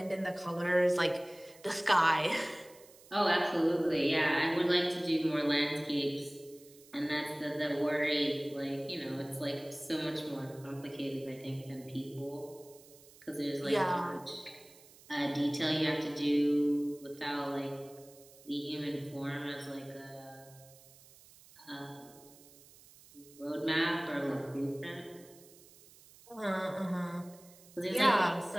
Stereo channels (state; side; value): noise; right; hiss, 23 dB below the sound